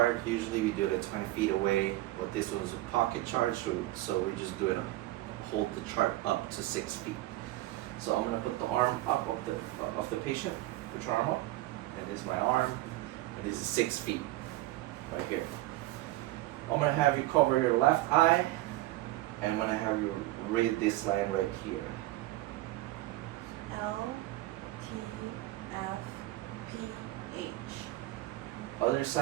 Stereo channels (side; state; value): left; quieter; 17.2 dB